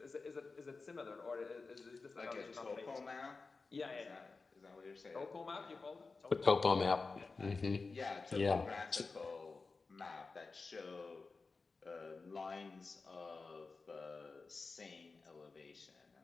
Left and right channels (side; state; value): right; quieter; 4.1 dB